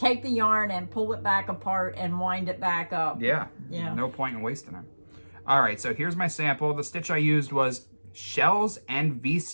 the yarn and pull it back apart and wind it back up. Yeah. No point in wasting it. All right, so here's my sample. The stitch I used was Shells and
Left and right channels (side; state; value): both; inverted; correlation -1.00